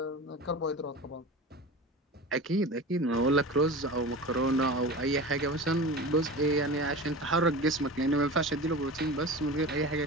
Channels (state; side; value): normal; both; correlation 0.32